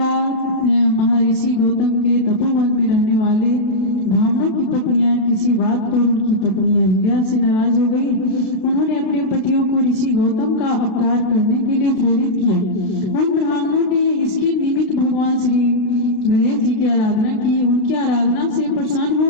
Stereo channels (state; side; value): late; right; 33 ms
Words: महर्षि गौतम के तपोवन में रहने वाले ब्राह्मणों की पत्नियां किसी बात पर उनकी पत्नी अहिल्या से नाराज हो गई। उन्होंने अपने पतियों को ऋषि गौतम का अपकार करने के लिए प्रेरित किया। उन ब्राह्मणों ने इसके निमित्त भगवान श्री गणेश जी की आराधना की। उनकी आराधना से प्रसन्न